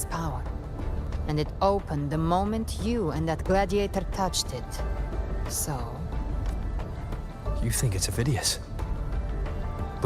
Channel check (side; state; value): both; identical; correlation 1.00